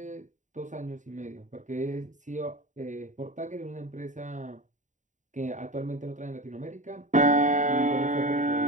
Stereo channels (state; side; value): late; left; 0.36 ms